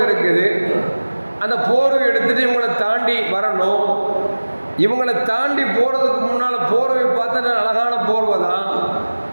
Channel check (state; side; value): inverted; both; correlation -1.00